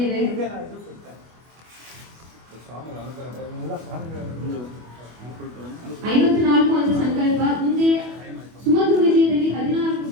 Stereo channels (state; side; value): late; left; 25 ms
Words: 54 ಅಂತ ಸಂಕಲ್ಪ. ಮುಂದೆ ಸುಮಧುರ ವಿಜಯದಲ್ಲಿ 14